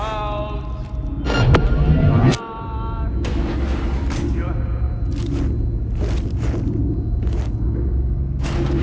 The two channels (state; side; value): identical; both; correlation 1.00